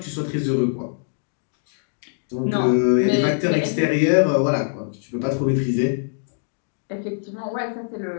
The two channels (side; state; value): right; silent; digital silence